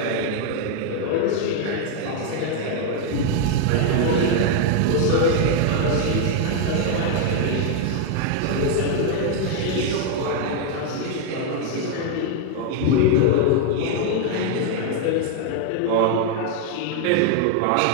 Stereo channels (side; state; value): both; different; correlation 0.00